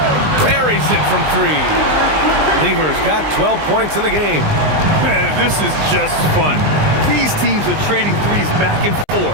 buries it from 3. Lever's got 12 points in the game. Man, this is just fun. These teams are trading threes back and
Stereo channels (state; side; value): late; left; 20 ms